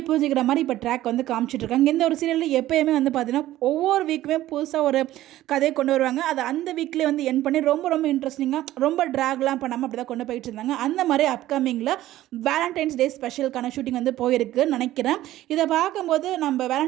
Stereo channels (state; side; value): quieter; left; 14.7 dB